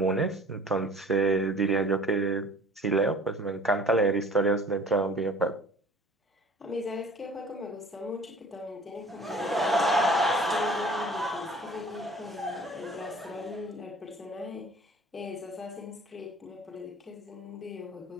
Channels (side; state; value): both; normal; correlation 0.48